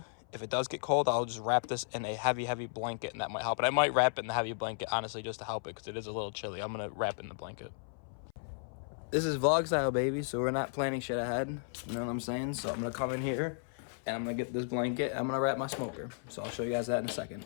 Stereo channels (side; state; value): right; silent; 55 dB below the other